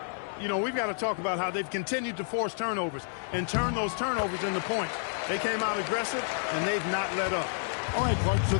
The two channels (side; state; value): right; silent; 58 dB below the other